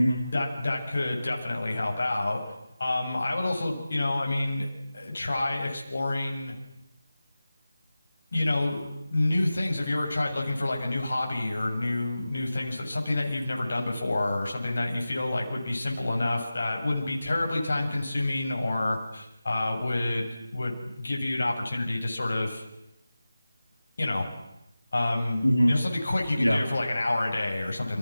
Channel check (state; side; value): inverted; both; correlation -0.95